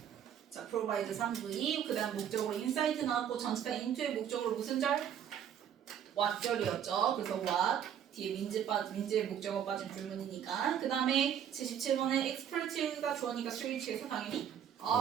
provide 3V 그 다음 목적으로 insight 나왔고 전치사 into의 목적으로 무슨 절? what절이었죠. 그래서 what 뒤에 민지의 목적어 빠진 불문이니까 그 다음에 77번에 expert가 주어니까 switch에서 당연히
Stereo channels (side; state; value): left; quieter; 9.2 dB